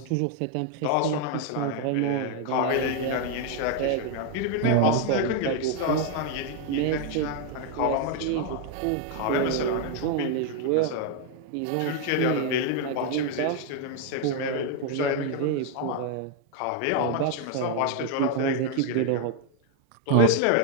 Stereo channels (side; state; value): both; different; correlation 0.01